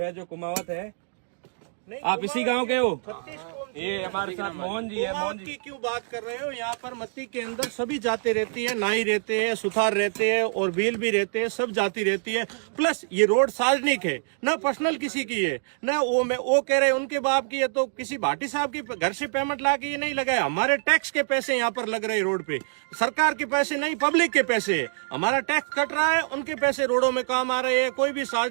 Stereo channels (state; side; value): silent; left; digital silence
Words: जो कुमावत है। आप इसी गांव के हो? ये हमारे साथ मोहन जी है। मोहन जी क्यों बात कर रहे हो? यहाँ पर मत्ती के अंदर सभी जाति रहती है, नाई रहते हैं, सुथार रहते हैं और भील भी रहते हैं, सब जाति रहती है। प्लस ये रोड सार्वजनिक है, ना पर्सनल किसी की है, ना वो कह रहे हैं उनके बाप की है। तो किसी भाटी साहब की घर से पेमेंट ला के ये नहीं लगाया। हमारे टैक्स के पैसे यहाँ पर लग रहे हैं रोड पे, सरकार के पैसे नहीं, पब्लिक के पैसे है। हमारा टैक्स कट रहा है, उनके पैसे रोडों में काम आ रहे हैं। कोई भी